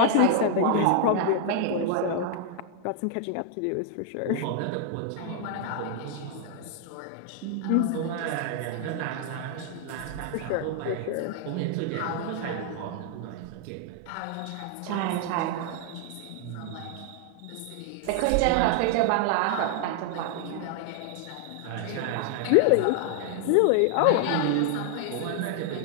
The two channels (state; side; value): different; both; correlation 0.00